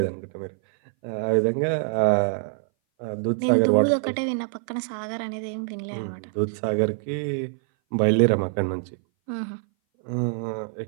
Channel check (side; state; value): left; silent; 59 dB below the other